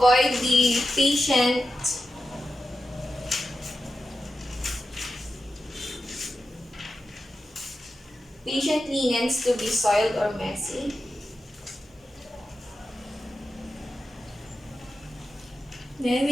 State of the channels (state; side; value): normal; both; correlation 0.91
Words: the patient linens to be soiled or messy. Then